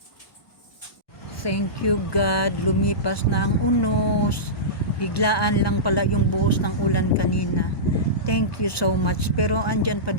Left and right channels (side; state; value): right; late; 1.2 ms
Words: Thank you God, lumipas na ang unos. Biglaan lang pala yung buhos ng ulan kanina. Thank you so much. Pero andyan pa